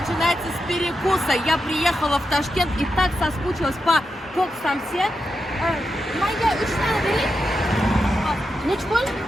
с перекуса. Я приехала в Ташкент и так соскучилась по кок-самсе. Майя, üç tane vereyim. Neç bol?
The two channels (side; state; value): both; normal; correlation 0.87